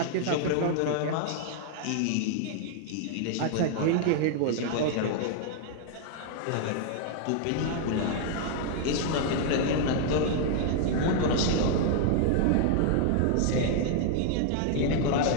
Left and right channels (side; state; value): both; different; correlation 0.00